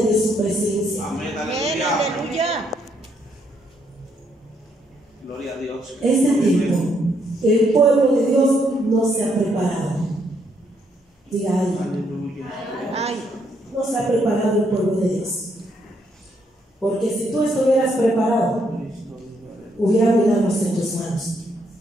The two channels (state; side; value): normal; both; correlation 0.74